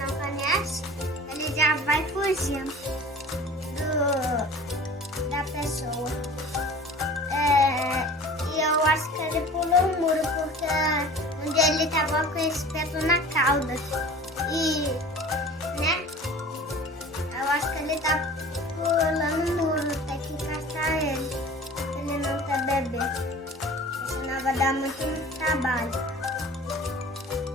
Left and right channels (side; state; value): both; normal; correlation 0.42